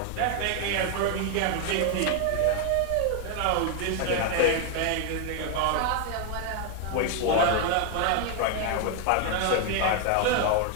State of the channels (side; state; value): both; different; correlation 0.00